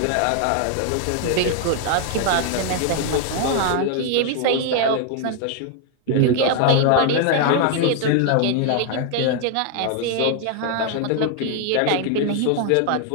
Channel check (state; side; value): different; both; correlation 0.00